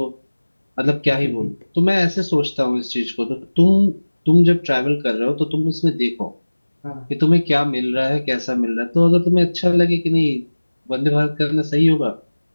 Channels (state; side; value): inverted; both; correlation -1.00